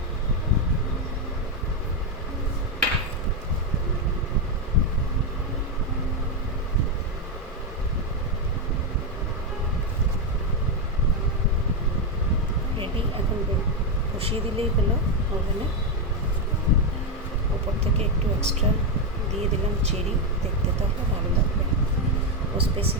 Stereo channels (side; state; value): both; normal; correlation 0.05